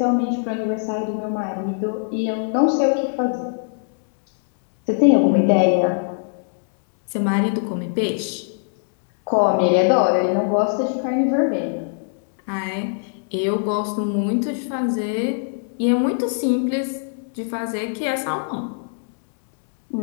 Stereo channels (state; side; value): silent; right; digital silence